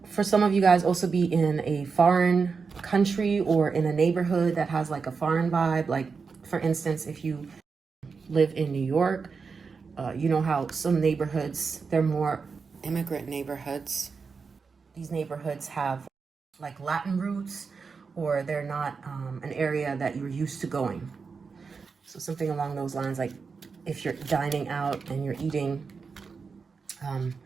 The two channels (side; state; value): left; quieter; 5.1 dB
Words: for some of you guys, also be in a foreign country or in a neighborhood that has like a foreign vibe. Like, for instance, if you live in New York, you know how some neighborhoods, they're more immigrant neighborhoods. These neighborhoods have like Latin roots, or they're not an area that you're used to going. So something along those lines, like if you're dining out and you're eating